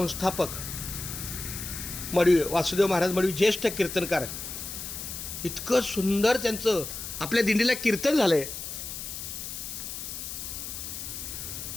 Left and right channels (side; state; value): left; noise; hiss, 7 dB below the sound